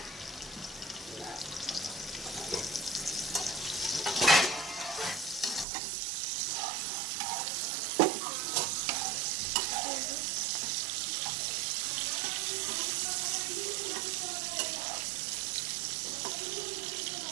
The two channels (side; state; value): left; drops out; at 5.7 s